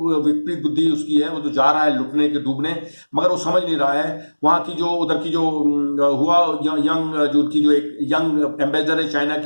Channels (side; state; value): both; inverted; correlation -1.00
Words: विपरीत बुद्धि उसकी है. वो तो जा रहा है लुटने के, डूबने, मगर वो समझ नहीं रहा है. वहां की जो उधर की जो हुआ यंग, जो उनकी जो एक यंग एम्बेसडर है चाइना